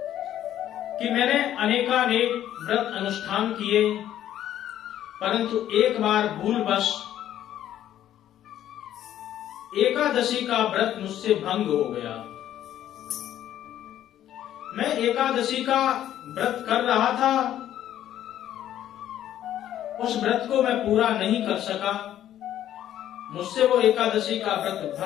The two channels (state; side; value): quieter; right; 11.7 dB